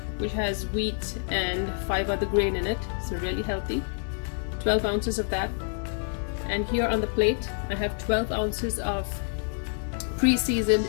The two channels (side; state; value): right; silent; digital silence